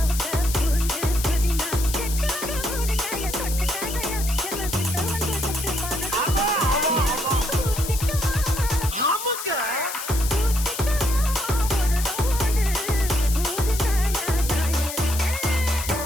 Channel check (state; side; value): noise; left; hiss, 7 dB below the sound